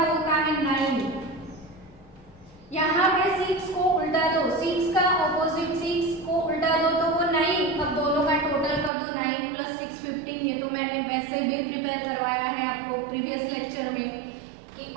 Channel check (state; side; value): drops out; left; at 8.9 s